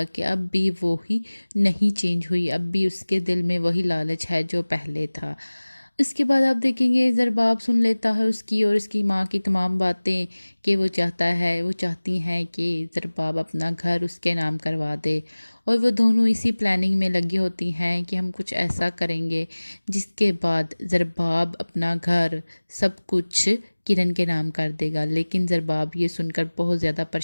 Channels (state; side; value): inverted; both; correlation -1.00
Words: कि अब भी वो ही नहीं चेंज हुई, अब भी उसके दिल में वही लालच है जो पहले था। इसके बाद आप देखेंगे ज़रबाब सुन लेता है उसकी और उसकी माँ की तमाम बातें कि वो चाहती हैं कि ज़रबाब अपना घर उसके नाम करवा दे। और वो दोनों इसी प्लानिंग में लगी होती हैं कि हम कुछ ऐसा करेंगे जिसके बाद ज़रबाब अपना घर सब कुछ किरण के नाम कर देगा। लेकिन ज़रबाब ये सुनकर बहुत ज़्यादा